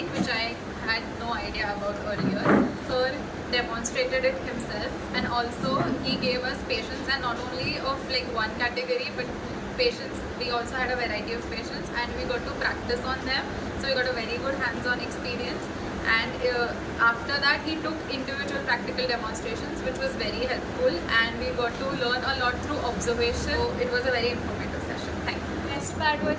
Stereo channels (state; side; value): identical; both; correlation 1.00